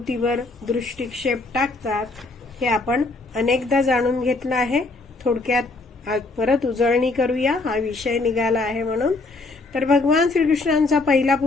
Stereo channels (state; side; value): quieter; right; 3.4 dB